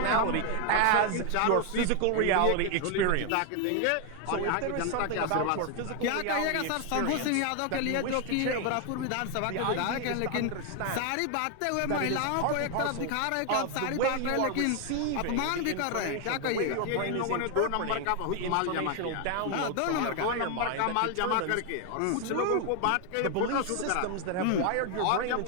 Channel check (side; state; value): both; different; correlation 0.00